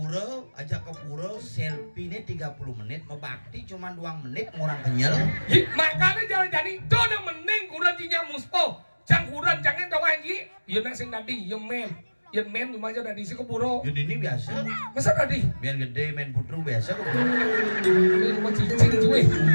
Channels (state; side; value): inverted; both; correlation -1.00